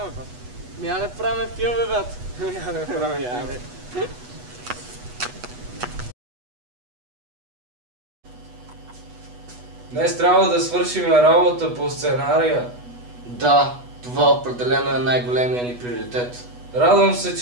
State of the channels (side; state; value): left; late; 8.2 ms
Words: брат. Я не правим филми, брат. Я не правим филми. Днес трябва да свършим работа по сценария. Да, това определено е най-големия ни приоритет. Радвам се,